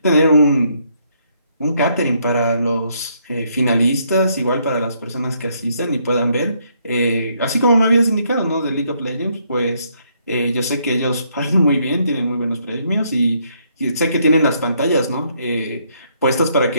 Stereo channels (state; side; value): inverted; both; correlation -0.72